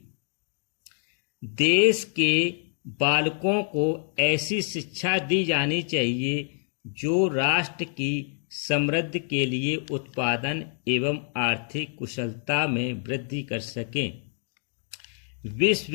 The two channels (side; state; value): right; silent; 57 dB below the other